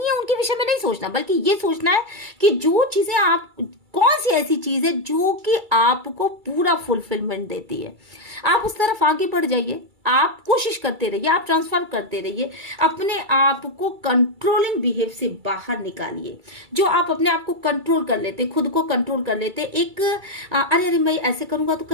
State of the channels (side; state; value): left; late; 2.3 ms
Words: उनके विषय में नहीं सोचना, बल्कि ये सोचना है कि जो चीजें आप, कौन सी ऐसी चीज है जो कि आपको पूरा फुलफिलमेंट देती है, आप उस तरफ आगे बढ़ जाइए। आप कोशिश करते रहिए, आप ट्रांसफर करते रहिए, अपने आप को कंट्रोलिंग बिहेव से बाहर निकालिए। जो आप अपने आप को कंट्रोल कर लेते, खुद को कंट्रोल कर लेते, एक अरे मैं ऐसे करूंगा तो